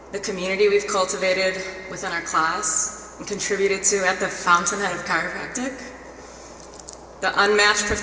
The community we've cultivated within our class and contributed to at the fountainhead of chiropractic, the unmatched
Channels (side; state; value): both; identical; correlation 1.00